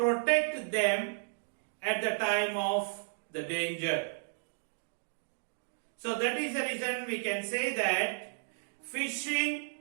them at the time of the danger. So that is the reason we can say that fishing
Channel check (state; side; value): silent; left; digital silence